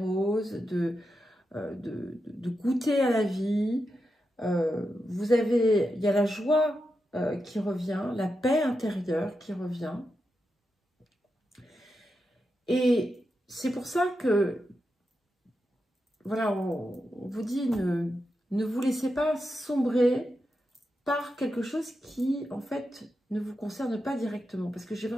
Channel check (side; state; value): both; normal; correlation 0.88